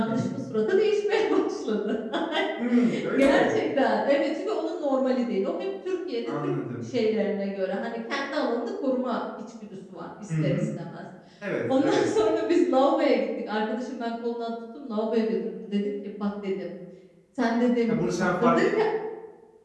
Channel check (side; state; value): both; identical; correlation 1.00